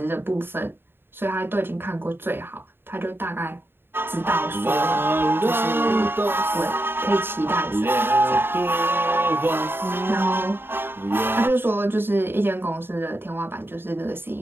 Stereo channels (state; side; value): late; left; 0.10 ms